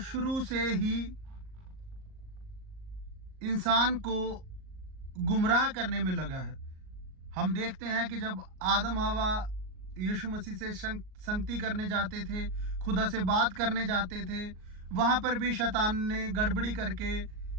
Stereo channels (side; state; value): left; late; 38 ms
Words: से ही इंसान को गुमराह करने में लगा है। हम देखते हैं कि जब आदम हवा यीशु मसीह से संगति करने जाते थे, खुदा से बात करने जाते थे, वहां पर भी शैतान ने गड़बड़ी करके